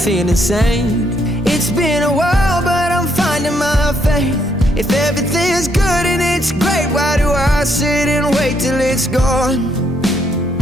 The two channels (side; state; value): both; normal; correlation 0.73